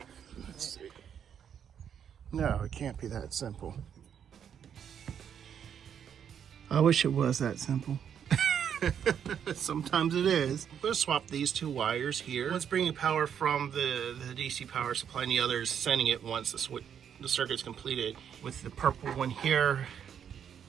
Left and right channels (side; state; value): left; quieter; 8.4 dB